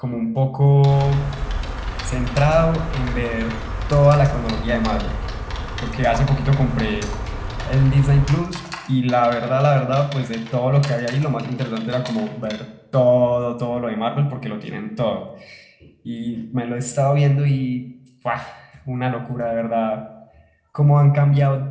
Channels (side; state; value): both; identical; correlation 1.00